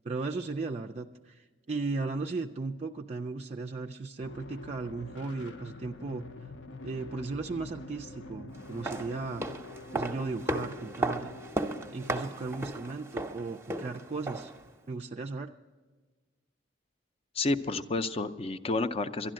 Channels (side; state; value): both; normal; correlation 0.57